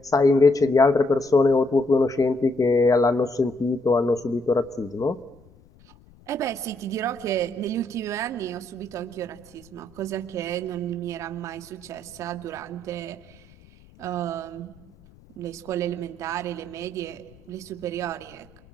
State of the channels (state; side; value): noise; left; rumble, 26 dB below the sound